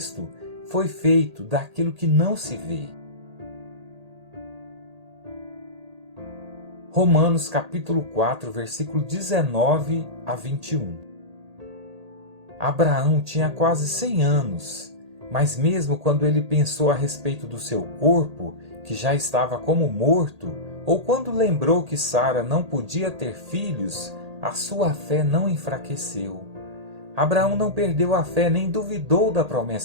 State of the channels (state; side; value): late; left; 1.8 ms